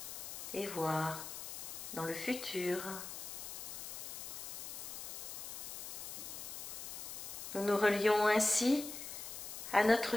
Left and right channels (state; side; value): noise; left; hiss, 8 dB below the sound